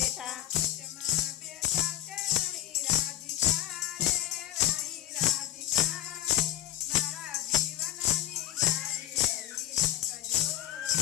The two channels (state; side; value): quieter; right; 13.2 dB